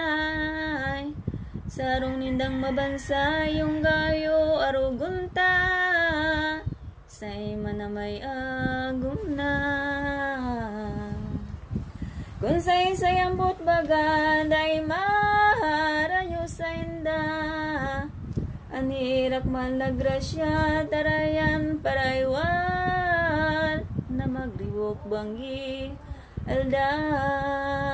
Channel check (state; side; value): identical; both; correlation 1.00